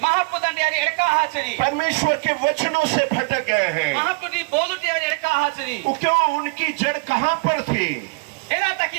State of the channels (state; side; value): quieter; left; 28.9 dB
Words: महापुत्र यारी एड़का हाचरी परमेश्वर के वचनों से भटक गए हैं। महापुत्री बोलते यारी एड़का हाचरी वो क्यों? उनकी जड़ कहाँ पर थी? एना तक